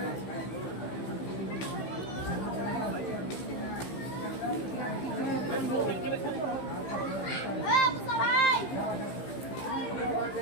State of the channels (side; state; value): right; late; 15 ms